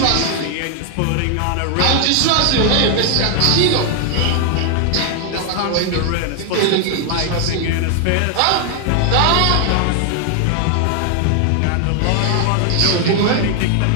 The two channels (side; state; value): both; different; correlation 0.00